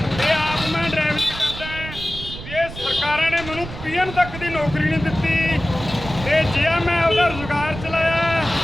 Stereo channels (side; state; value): right; noise; rumble, 11 dB below the sound